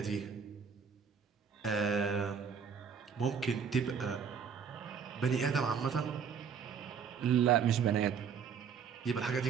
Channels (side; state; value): left; quieter; 6.8 dB